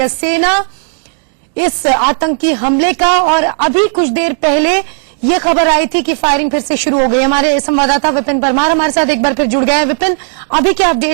सेना इस आतंकी हमले का। और अभी कुछ देर पहले ये खबर आई थी कि फायरिंग फिर से शुरू हो गई। हमारे संवाददाता विपिन परमार हमारे साथ एक बार फिर जुड़ गए हैं। विपिन, अभी क्या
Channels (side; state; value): left; silent; digital silence